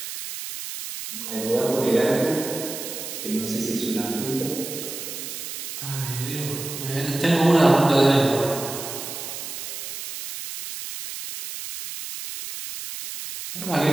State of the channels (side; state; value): right; noise; hiss, 8 dB below the sound